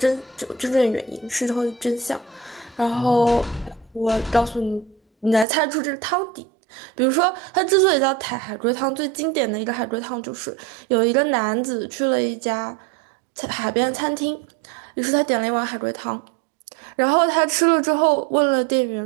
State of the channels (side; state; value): left; drops out; at 5.5 s